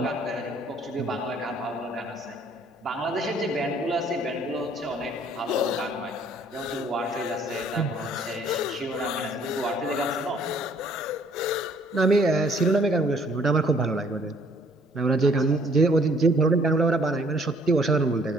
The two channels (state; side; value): normal; both; correlation 0.61